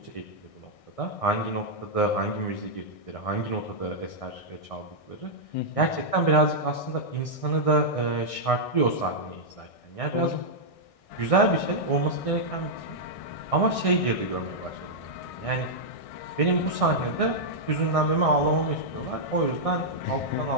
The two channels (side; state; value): right; late; 1.6 ms